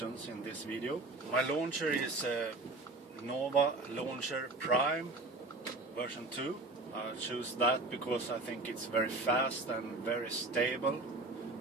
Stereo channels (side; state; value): left; quieter; 3.1 dB